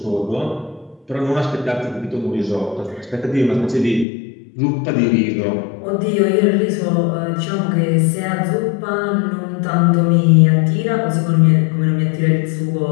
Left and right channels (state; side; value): drops out; right; at 4.0 s